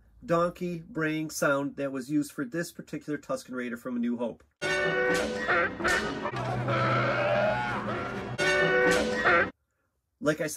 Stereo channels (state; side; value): identical; both; correlation 1.00